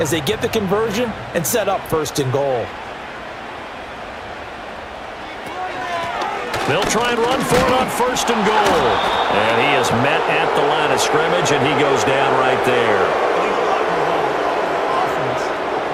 as they get the conversion and set up 1st and goal. They'll try and run for it on 1st and goal. And he is met at the line of scrimmage, and he goes down right there.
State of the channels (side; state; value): both; identical; correlation 1.00